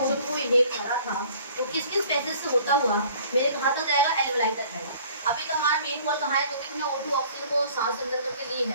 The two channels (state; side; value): inverted; both; correlation -0.52